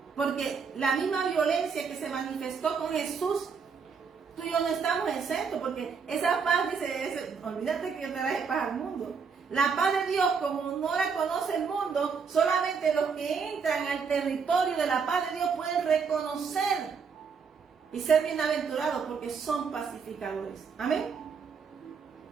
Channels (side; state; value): left; quieter; 5.8 dB